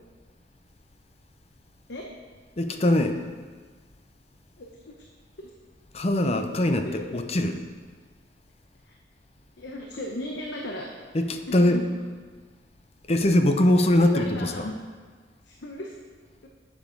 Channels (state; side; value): normal; both; correlation 0.75